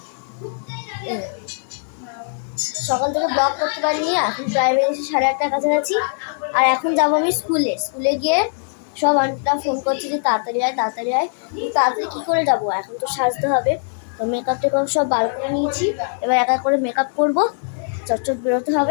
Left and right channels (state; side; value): silent; right; digital silence